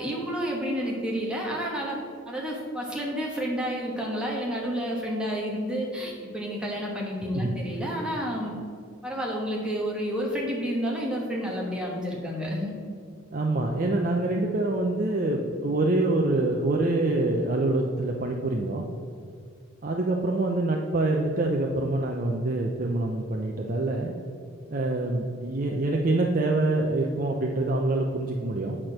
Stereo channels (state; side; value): normal; both; correlation 0.57